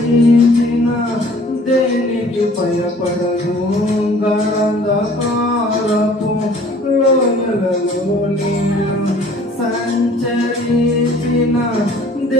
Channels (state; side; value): normal; both; correlation 0.52